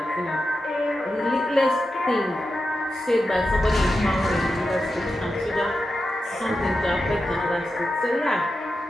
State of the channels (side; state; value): both; normal; correlation 0.90